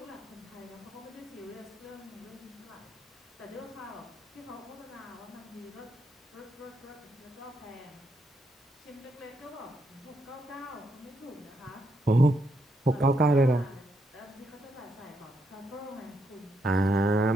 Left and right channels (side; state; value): both; normal; correlation 0.78